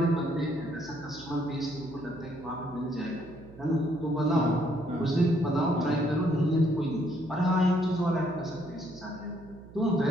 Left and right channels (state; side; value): noise; right; hum, 20 dB below the sound